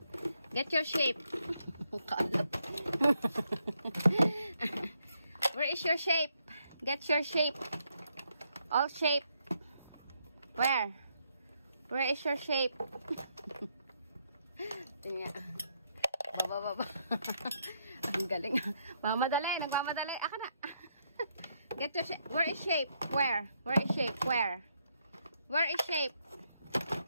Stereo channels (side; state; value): both; inverted; correlation -0.76